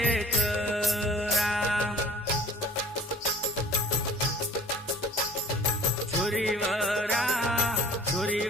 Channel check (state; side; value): normal; both; correlation 0.48